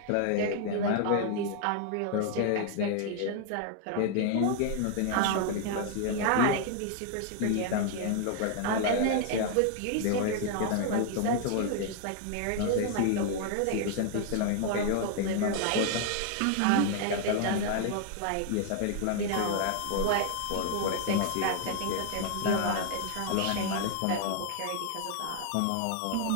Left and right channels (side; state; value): both; different; correlation 0.00